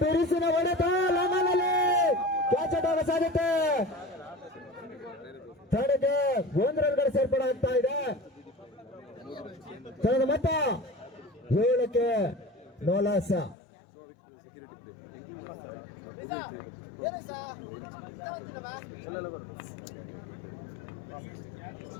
ಬಿರುಸಿನ ಹೊಡೆತ ಲಂಗನಲ್ಲಿ ಕ್ಯಾಚ್ ಆಗುವ ಸಾಧ್ಯತೆ. ತಂಡಕ್ಕೆ 1 ರನ್ಗಳ ಸೇರ್ಪಡೆ ಆಗ್ತಾ ಇದೆ. ತಂಡದ ಮೊತ್ತ 7ಕ್ಕೆ ನೋಲಾಸ.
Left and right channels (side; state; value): right; drops out; at 13.6 s